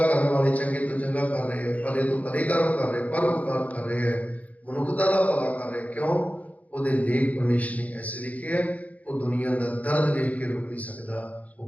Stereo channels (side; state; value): right; late; 0.071 ms